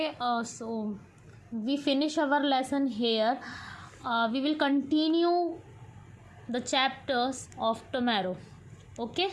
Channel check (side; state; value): both; identical; correlation 1.00